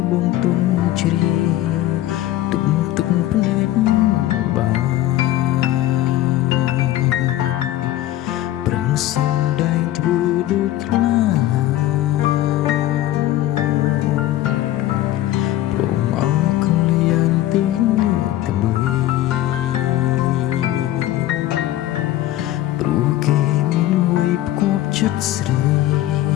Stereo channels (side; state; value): right; quieter; 14.2 dB